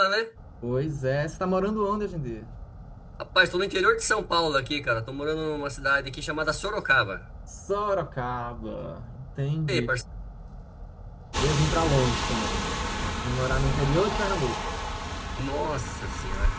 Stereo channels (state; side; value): identical; both; correlation 1.00